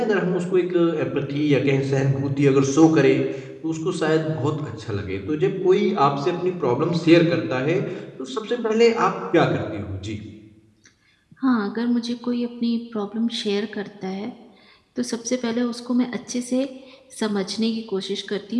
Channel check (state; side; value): identical; both; correlation 1.00